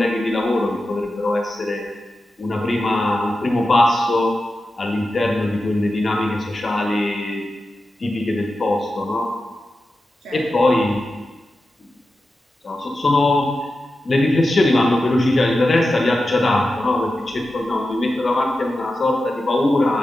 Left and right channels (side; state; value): both; normal; correlation 0.92